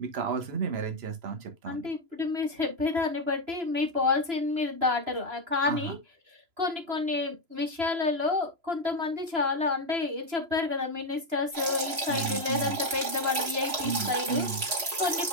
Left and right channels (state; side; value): late; left; 3.0 ms